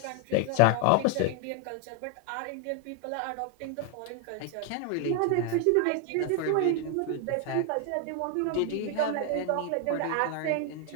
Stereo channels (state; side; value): different; both; correlation 0.01